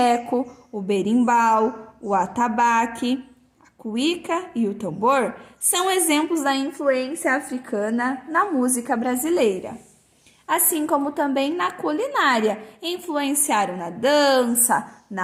o berimbau, o atabaque, a cuíca e o tambor, são exemplos da influência africana na música brasileira. Assim como também na culinária, influenciaram na dança,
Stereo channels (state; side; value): identical; both; correlation 1.00